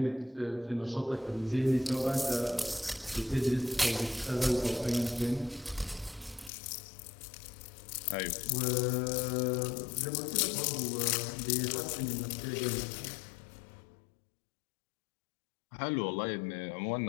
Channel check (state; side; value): drops out; right; at 6.5 s